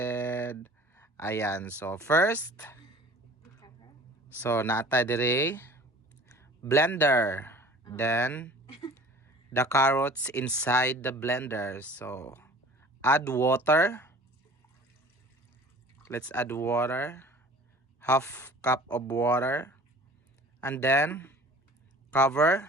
Ayan, so first, so natay dire blender, then the carrots inside the blender. So add water, let's add water, half cup of water, and then cover.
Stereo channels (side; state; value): both; normal; correlation 0.45